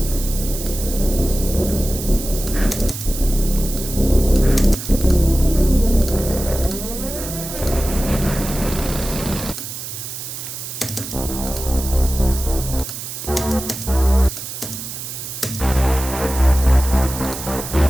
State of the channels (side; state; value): right; noise; hiss, 8 dB below the sound